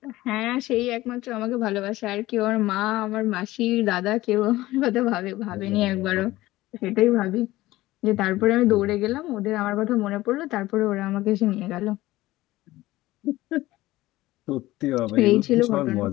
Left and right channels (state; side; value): quieter; right; 17.4 dB